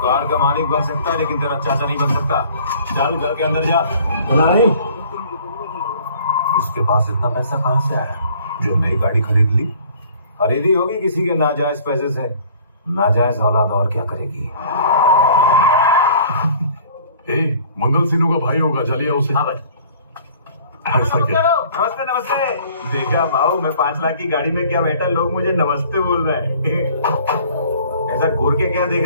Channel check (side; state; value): both; inverted; correlation -0.52